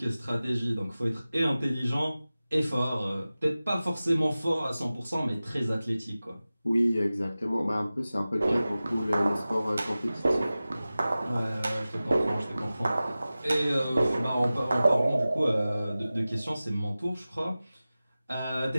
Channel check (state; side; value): inverted; both; correlation -0.96